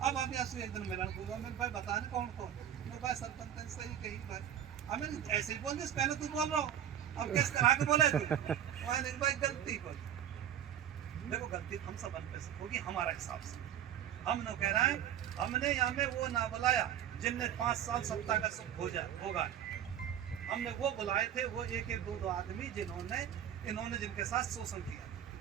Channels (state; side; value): quieter; left; 10.1 dB